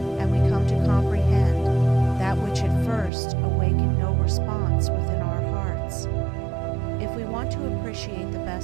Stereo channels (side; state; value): left; drops out; at 3.1 s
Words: and we come to comprehend that which at first awakened no response within our hearts. If we want to appreciate the